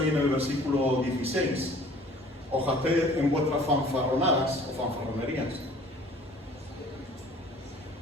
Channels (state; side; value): normal; both; correlation 0.51